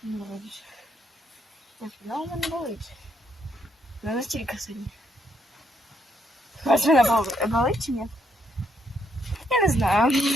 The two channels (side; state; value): both; normal; correlation 0.75